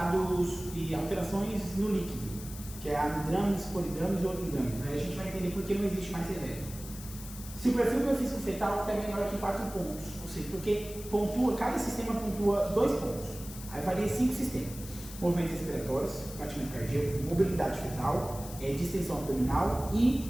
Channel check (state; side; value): noise; left; hiss, 14 dB below the sound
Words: e alterações no líquido, que é amidrames, polidrames e oligodrames. Aí a gente vai entender por que não existe mais severo. Se o perfil biofísico fetal é menor que 4 pontos, ou seja, porque cada sistema pontua 2 pontos, aí varia 5 sistemas: movimentos respiratórios, batimento cardíaco, mobilidade fetal, distensão abdominal